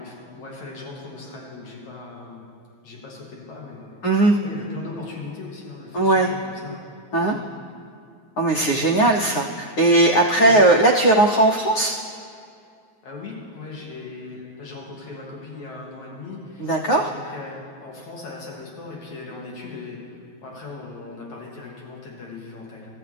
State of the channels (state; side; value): late; right; 9.4 ms